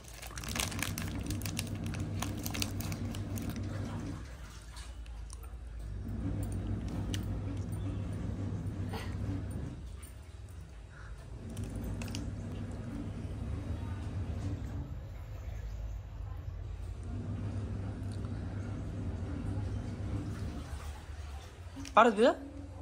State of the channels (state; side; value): identical; both; correlation 1.00